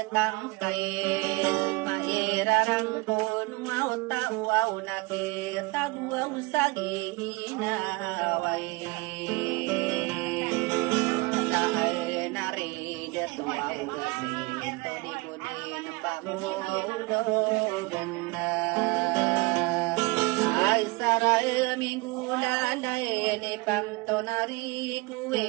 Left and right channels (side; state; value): left; quieter; 25.1 dB